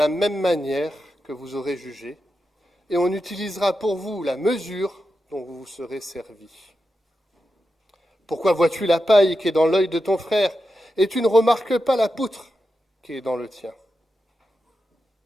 même manière que vous aurez jugé, et on utilisera pour vous la mesure dont vous vous serez servi. Pourquoi vois-tu la paille qui est dans l'œil de ton frère, et tu ne remarques pas la poutre qui est dans le tien?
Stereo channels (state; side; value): normal; both; correlation 0.89